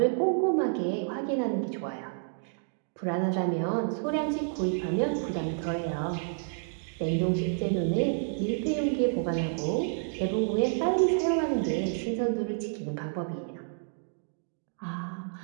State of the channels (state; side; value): silent; left; digital silence